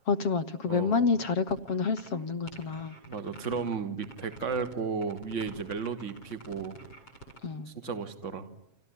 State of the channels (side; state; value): right; late; 7.4 ms